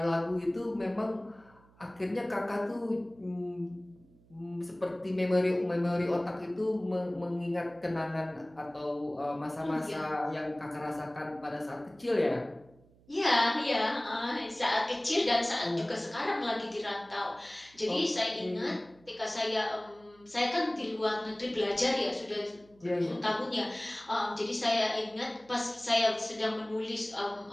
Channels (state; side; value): noise; right; hum, 28 dB below the sound